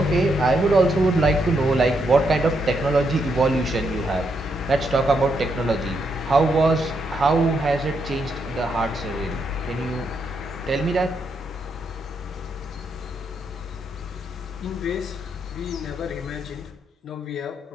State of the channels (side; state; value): both; normal; correlation 0.79